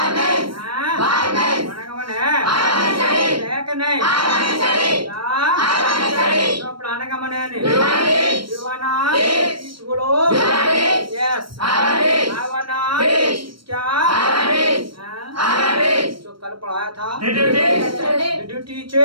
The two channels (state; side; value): late; left; 0.74 ms